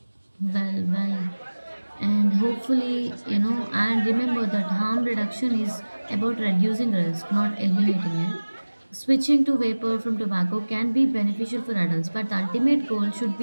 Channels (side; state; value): both; inverted; correlation -1.00